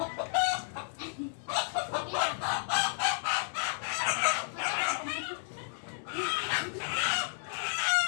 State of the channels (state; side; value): silent; right; digital silence